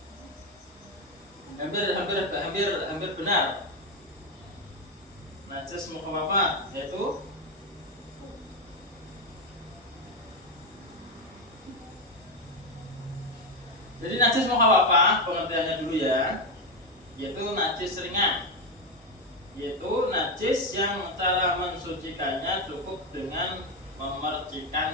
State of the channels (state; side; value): normal; both; correlation 0.10